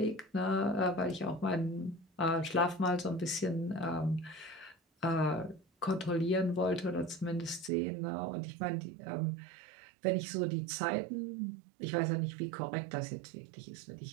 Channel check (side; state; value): left; drops out; at 7.7 s